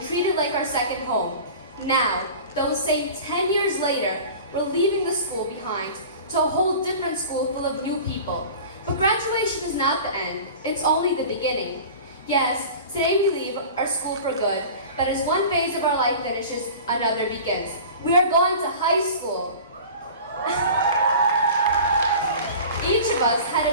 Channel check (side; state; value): both; inverted; correlation -0.38